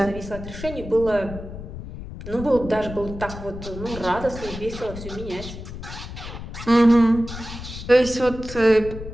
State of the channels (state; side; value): noise; left; rumble, 11 dB below the sound